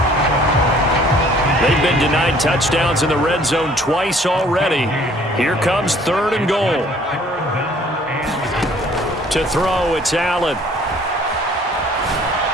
They've been denied touchdowns in the red zone twice already. Here comes third and goal. To throw, it's Allen.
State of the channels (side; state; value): both; normal; correlation 0.57